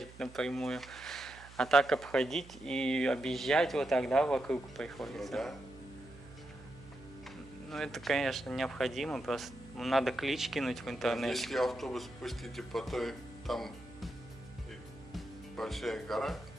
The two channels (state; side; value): noise; right; hum, 19 dB below the sound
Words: напрямую. А так обходить и объезжать вот тогда вокруг приходится. Ну, да. Ну, это, конечно, необходимо, просто надо клич кинуть в интернете. Если автобус пустите по той, там большая гора,